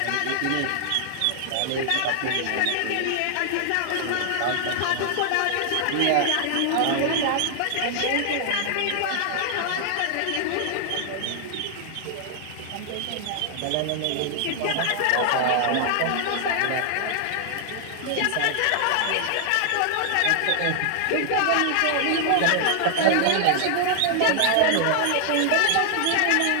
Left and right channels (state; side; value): different; both; correlation 0.00